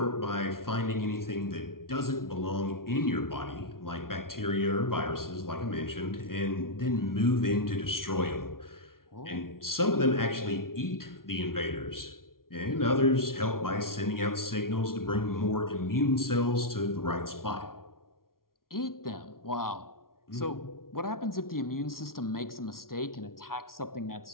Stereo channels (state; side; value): late; right; 0.93 ms